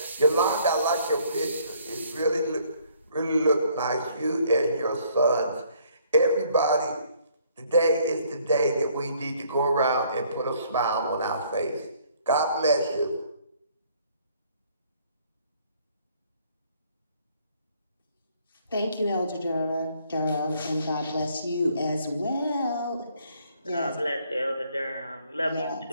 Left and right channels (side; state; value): both; inverted; correlation -0.63